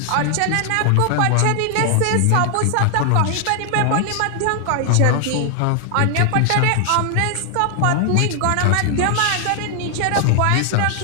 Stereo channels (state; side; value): different; both; correlation 0.00